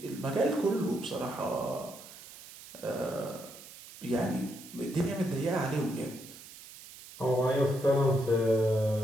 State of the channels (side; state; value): right; noise; hiss, 17 dB below the sound